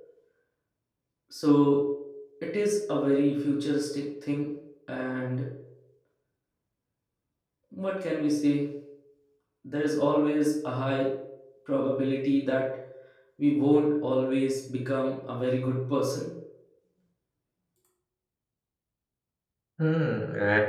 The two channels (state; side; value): identical; both; correlation 1.00